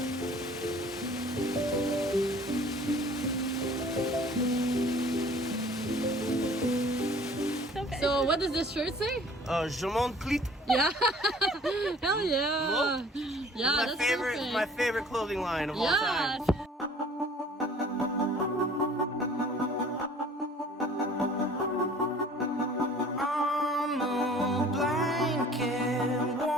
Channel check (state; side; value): normal; both; correlation 0.51